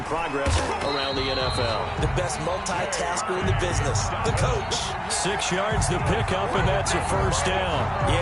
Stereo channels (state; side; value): identical; both; correlation 1.00